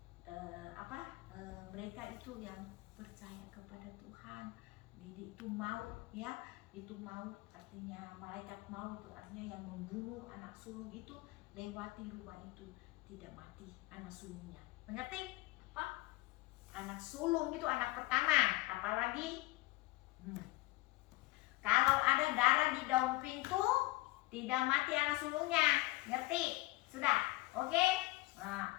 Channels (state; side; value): quieter; right; 20.4 dB